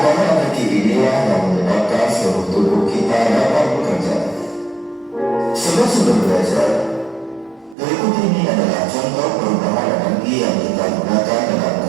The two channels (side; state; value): left; drops out; at 7.8 s